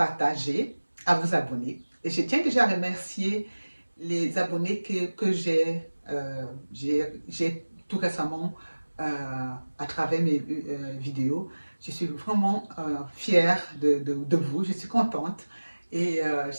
à vous abonner. Et je tiens déjà à remercier les abonnés que j'ai tout récemment à travers mes vidéos. Je suis vraiment fière de vous, je suis contente et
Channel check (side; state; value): both; inverted; correlation -1.00